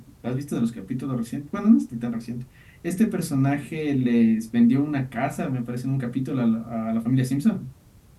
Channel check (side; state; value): both; identical; correlation 1.00